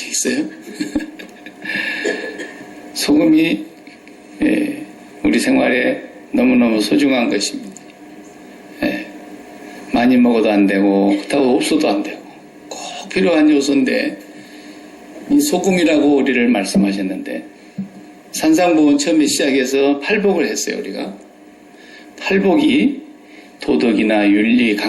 있어요? 소금이 우리 생활에 너무너무 소중한 것입니다. 많이 먹어도 안 되고 그렇다고 없어도 안 되고 꼭 필요한 요소인데 이 소금이라고 우리를 말씀하셨는데 산상보훈 처음에 시작해서 팔복을 했어요. 우리가 팔복이 도덕이나 윤리,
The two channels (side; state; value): both; identical; correlation 1.00